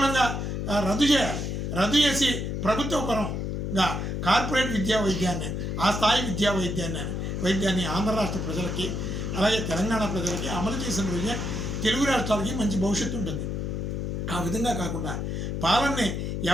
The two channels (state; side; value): noise; left; hum, 2 dB below the sound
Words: రద్దు చేయాలి. రద్దు చేసి ప్రభుత్వ పరంగా కార్పొరేట్ విద్యా వైద్యాన్ని, ఆ స్థాయి విద్యా వైద్యాన్ని ఆంధ్ర రాష్ట్ర ప్రజలకి అలాగే తెలంగాణ ప్రజలకి అమలు చేసిన రోజే తెలుగు రాష్ట్రాలకి మంచి భవిష్యత్తు ఉంటుంది. ఆ విధంగా కాకుండా పాలనని